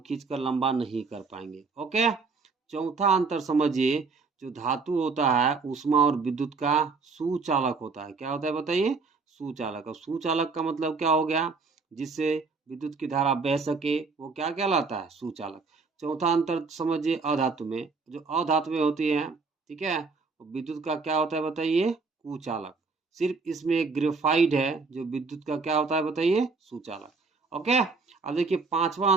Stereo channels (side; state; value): left; quieter; 4.4 dB